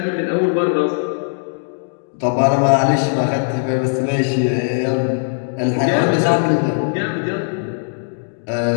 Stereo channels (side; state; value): right; silent; 67 dB below the other